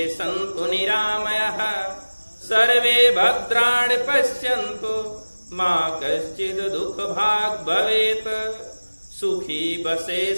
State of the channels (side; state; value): both; inverted; correlation -1.00